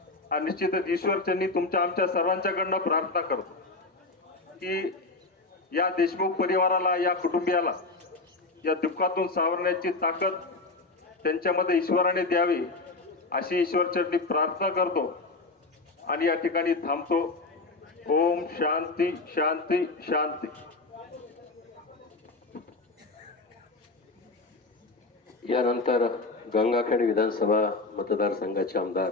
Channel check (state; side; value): quieter; right; 3.4 dB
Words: आणि निश्चितच ईश्वरचरणी तुमच्या आमच्या सर्वांच्याकडनं प्रार्थना करतो की या देशमुख परिवाराला, या कुटुंबियाला या दुःखातून सावरण्याची ताकद त्यांच्यामध्ये ईश्वराने द्यावी अशी ईश्वरचरणी प्रार्थना करतो आणि या ठिकाणी थांबतो। ओम शांती शांती शांती। यानंतर गंगाखेड विधानसभा मतदारसंघाचे आमदार